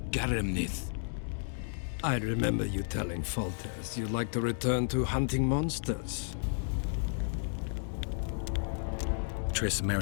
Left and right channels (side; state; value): right; silent; digital silence